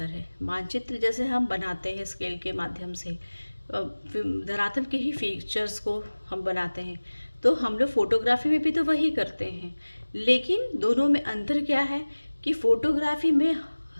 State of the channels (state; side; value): inverted; both; correlation -1.00